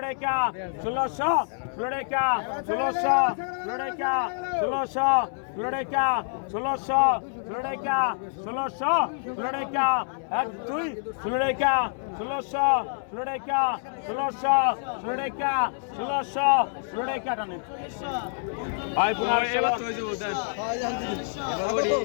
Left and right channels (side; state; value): right; silent; 60 dB below the other